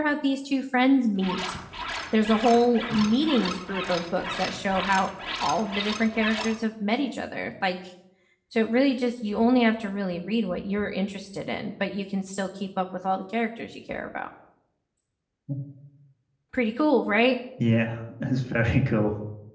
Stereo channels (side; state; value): both; identical; correlation 1.00